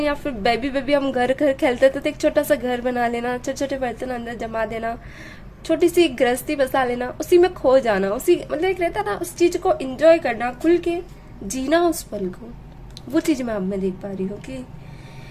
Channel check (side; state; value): both; identical; correlation 1.00